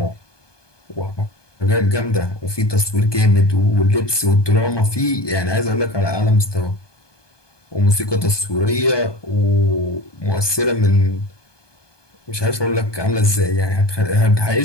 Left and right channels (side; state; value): right; late; 1.2 ms